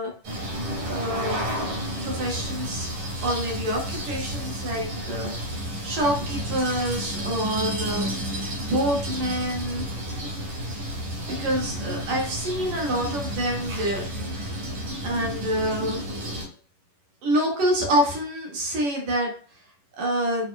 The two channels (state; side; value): late; left; 11 ms